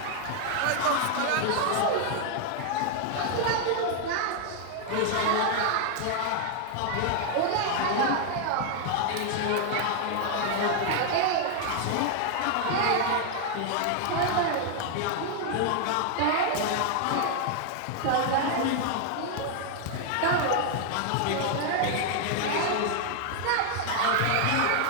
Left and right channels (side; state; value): both; different; correlation 0.00